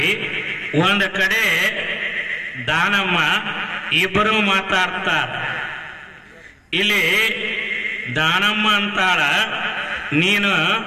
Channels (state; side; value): identical; both; correlation 1.00